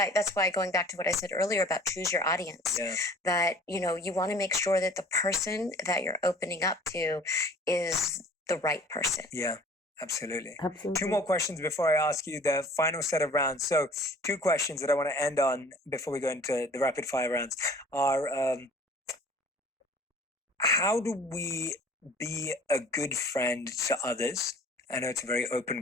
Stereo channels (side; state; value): both; normal; correlation 0.50